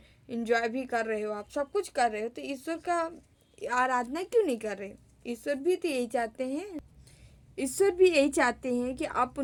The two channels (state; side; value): identical; both; correlation 1.00